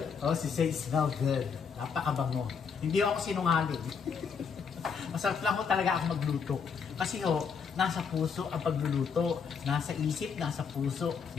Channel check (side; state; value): right; quieter; 6.1 dB